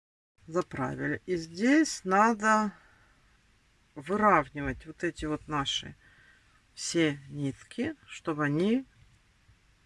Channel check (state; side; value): identical; both; correlation 1.00